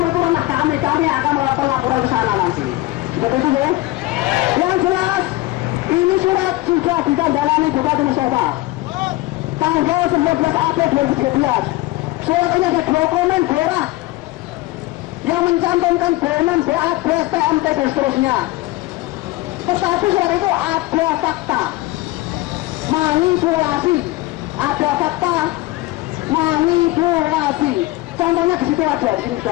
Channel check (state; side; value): quieter; right; 19.0 dB